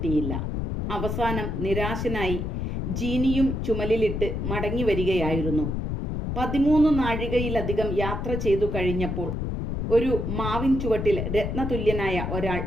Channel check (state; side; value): noise; left; rumble, 2 dB below the sound